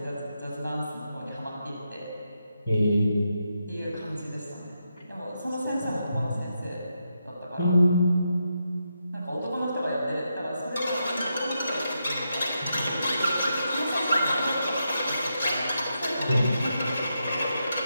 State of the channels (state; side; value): inverted; both; correlation -0.84